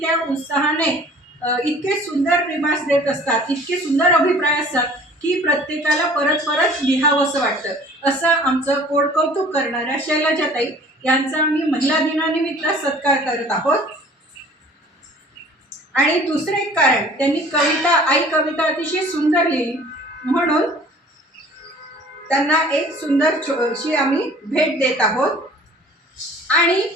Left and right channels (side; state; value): both; normal; correlation 0.49